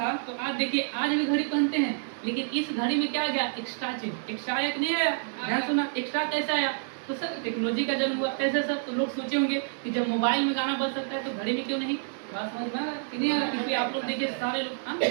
तो आज देखिए आज भी घड़ी पहनते हैं, लेकिन इस घड़ी में क्या आ गया? एक्स्ट्रा चीज। एक्स्ट्रा आया कि नहीं आया? ध्यान सुना, एक्स्ट्रा कैसे आया? तो सर टेक्नोलॉजी का जन्म हुआ। कैसे सर? तो लोग सोचे होंगे कि जब मोबाइल में गाना बज सकता है तो घड़ी में क्यों नहीं? बात समझ में आ रहा है कि नहीं आ रहा? क्योंकि आप लोग देखिए सारे लोग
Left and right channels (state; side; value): silent; left; digital silence